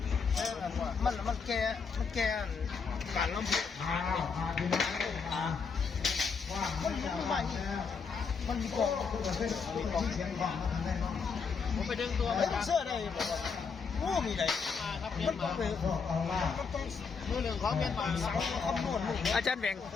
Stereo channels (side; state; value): right; quieter; 5.5 dB